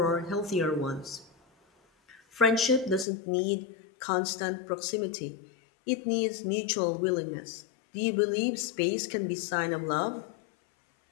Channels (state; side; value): drops out; right; at 3.1 s